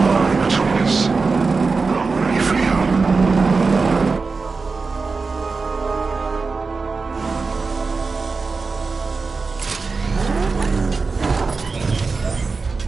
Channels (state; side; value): quieter; left; 4.3 dB